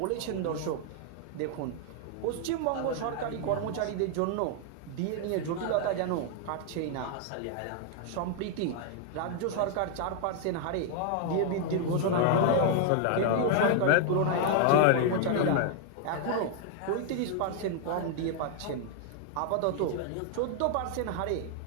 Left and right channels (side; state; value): both; different; correlation 0.00